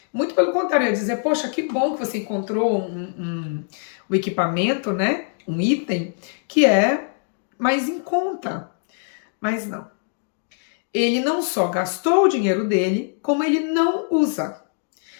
Muito pelo contrário, eu ia dizer, poxa, que bom que você encontrou um equipamento, né? Um item que é mais em conta. Mas não. Ele não só gastou o dinheiro dele, como ele não usa.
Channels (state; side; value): silent; right; 64 dB below the other